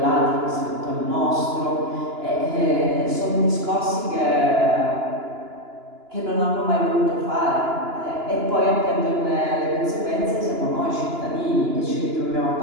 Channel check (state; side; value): late; left; 2.9 ms